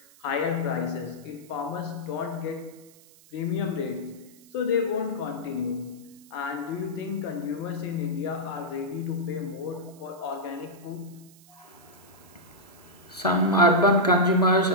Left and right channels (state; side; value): noise; right; hiss, 25 dB below the sound